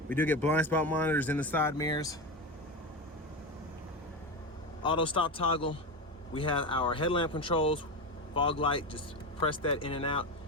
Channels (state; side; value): normal; both; correlation 0.19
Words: We do get blind spot monitors in the side mirrors. Auto stop toggle. We have our headlamp controls, fog light, just press that in and out.